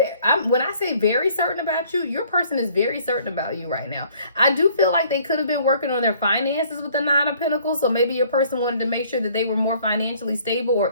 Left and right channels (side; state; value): both; inverted; correlation -0.58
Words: When I say very certain about you, your person is very certain about you right now. I do feel like they could have been working on their finances with the 9 of Pentacles. So maybe your person wanted to make sure that they were more financially stable or